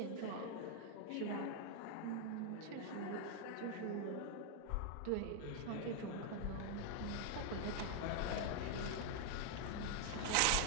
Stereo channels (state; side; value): different; both; correlation 0.00